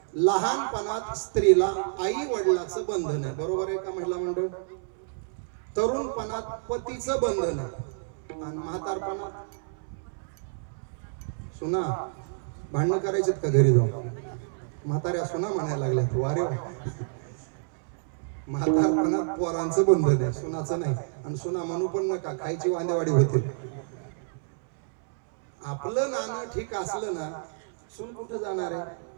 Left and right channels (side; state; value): left; silent; 59 dB below the other